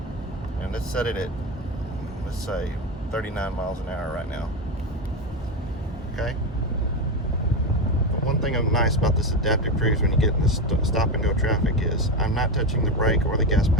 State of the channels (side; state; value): both; normal; correlation 0.15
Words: And let's set it at, let's say 39 miles an hour right now. Okay? But one thing nice about this adaptive cruise when you get in this stop and go traffic is I'm not touching the brake or the gas